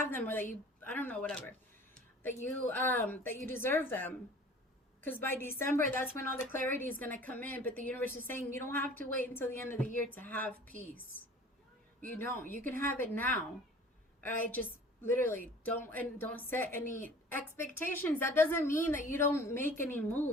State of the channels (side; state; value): both; normal; correlation 0.46